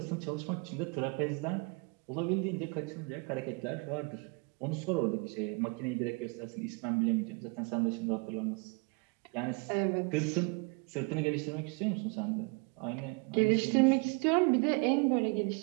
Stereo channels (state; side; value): quieter; left; 31.4 dB